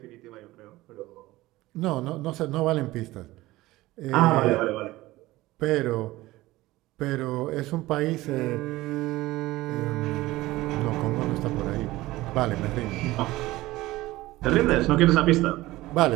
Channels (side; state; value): left; quieter; 18.1 dB